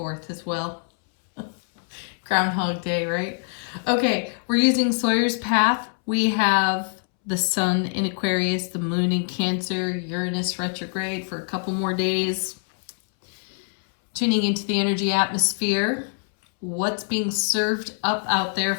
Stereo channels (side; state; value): right; silent; 63 dB below the other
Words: as well. Groundhog Day, right? Okay, we're using Sawyer's Path. We have the sun in Aquarius, the moon in Cancer, Uranus retrograde for a couple more days. Tuning into the energy atmosphere. What's being served up out there